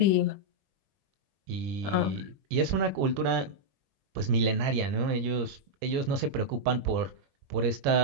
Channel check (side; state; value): left; late; 21 ms